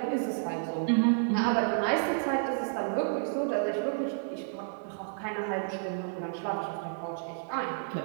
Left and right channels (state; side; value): silent; left; 57 dB below the other